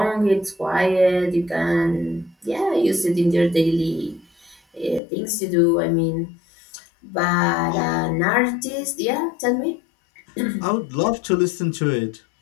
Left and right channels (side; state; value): right; drops out; at 5.0 s